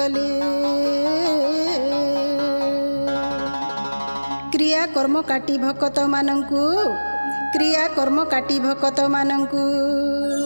क्रिया कर्म काटी भक्त मानंकु क्रिया कर्म काटी भक्त मानंकु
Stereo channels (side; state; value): both; inverted; correlation -1.00